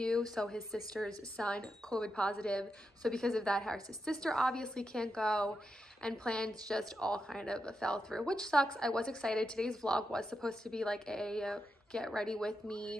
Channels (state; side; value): normal; both; correlation 0.86